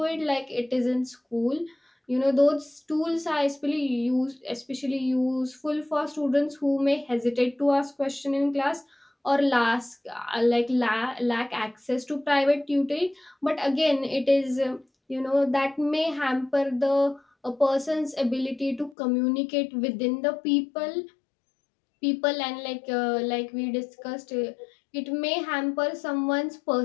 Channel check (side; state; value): right; drops out; at 18.9 s